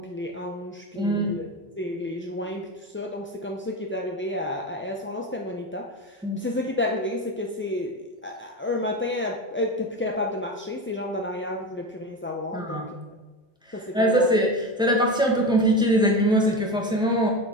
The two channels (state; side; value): normal; both; correlation 0.23